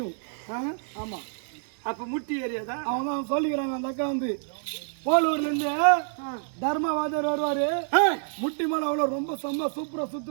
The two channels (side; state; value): left; silent; 60 dB below the other